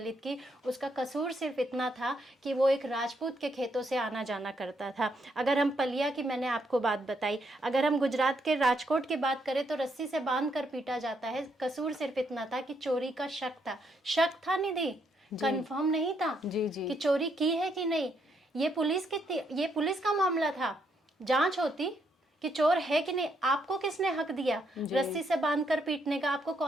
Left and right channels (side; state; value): both; normal; correlation 0.75